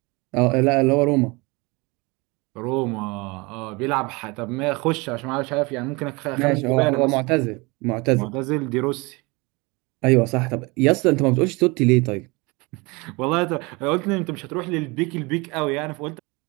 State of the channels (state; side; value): quieter; left; 26.1 dB